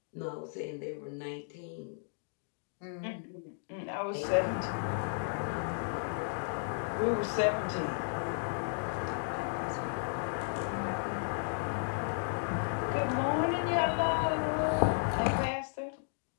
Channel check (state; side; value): silent; right; digital silence